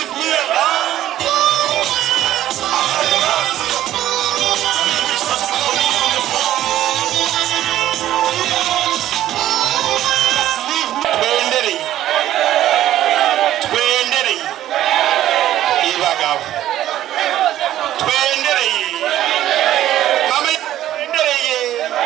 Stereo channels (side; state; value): left; quieter; 12.9 dB